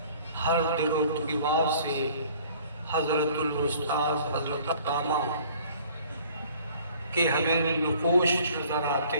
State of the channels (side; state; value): both; inverted; correlation -0.53